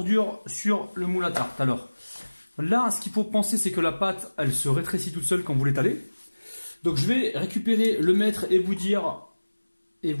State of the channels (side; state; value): both; inverted; correlation -1.00